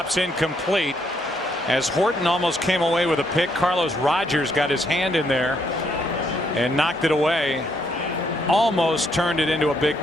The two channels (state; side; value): normal; both; correlation 0.73